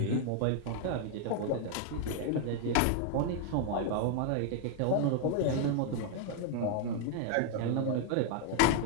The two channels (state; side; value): different; both; correlation 0.00